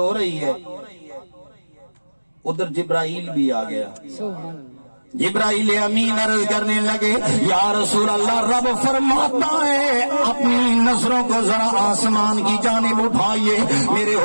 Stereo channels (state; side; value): inverted; both; correlation -1.00